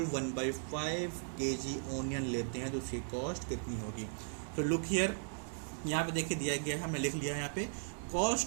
1/5 केजी ओनियन लेते हैं तो उसकी कॉस्ट कितनी होगी। तो लुक हियर, यहाँ पे देखिए दिया गया है, हमने लिख लिया है यहाँ पे,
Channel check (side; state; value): left; silent; 53 dB below the other